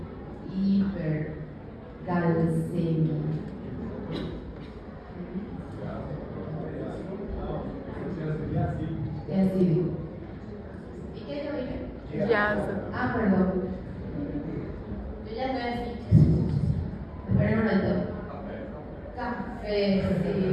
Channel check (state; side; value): identical; both; correlation 1.00